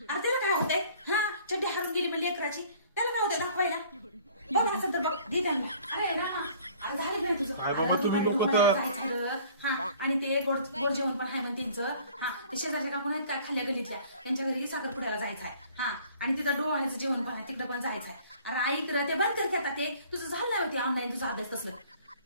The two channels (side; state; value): both; inverted; correlation -0.53